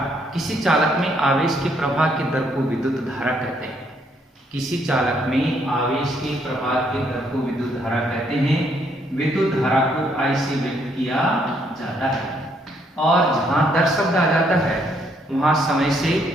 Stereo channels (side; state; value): both; normal; correlation 0.71